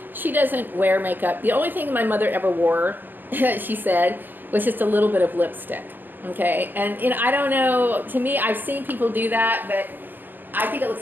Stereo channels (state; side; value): late; left; 0.091 ms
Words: she doesn't wear makeup. The only thing my mother ever wore, she said, was just a little bit of lipstick. Okay, and I don't know. To me, I've seen people do that, but I think it looks